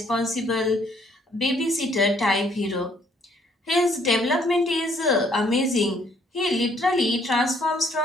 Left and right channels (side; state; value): both; normal; correlation 0.65